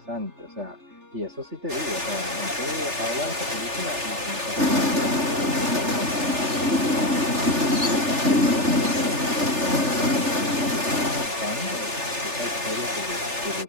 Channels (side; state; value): left; late; 3.4 ms